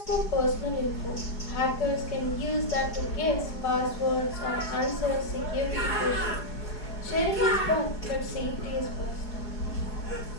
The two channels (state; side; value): late; right; 4.8 ms